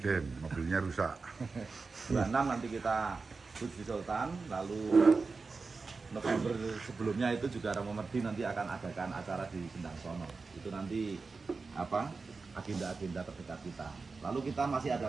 mobilnya rusak. 26 nanti kita di Sultan, lalu November sebelumnya itu juga Romo Merdi nanti akan adakan acara di Sendang Sono. Itu nanti apa agenda-agenda terdekat kita. Lalu kita masih ada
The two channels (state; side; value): quieter; left; 4.3 dB